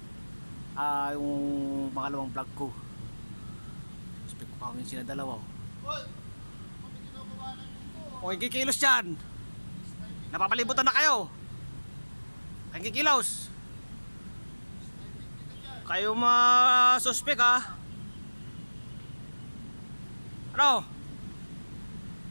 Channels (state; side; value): inverted; both; correlation -1.00